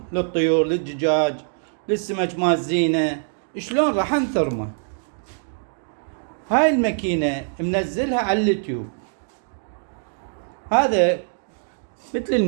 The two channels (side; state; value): left; silent; digital silence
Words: للطيور، للدجاج، للسمك مال زينه. شلون راح انثرمه؟ هاي الماكينه منزلها على اليوتيوب. هذا مثل